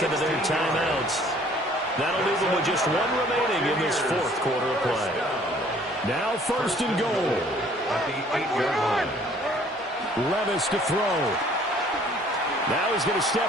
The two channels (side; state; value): both; normal; correlation 0.57